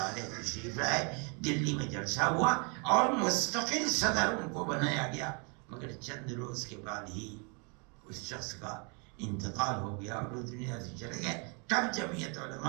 تشریف لائے، دلی میں جلسہ ہوا اور مستقل صدر ان کو بنایا گیا، مگر چند روز کے بعد ہی اس شخص کا انتقال ہو گیا اور وہ دنیا سے چلے گئے۔ تب جمعیت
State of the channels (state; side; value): quieter; left; 34.5 dB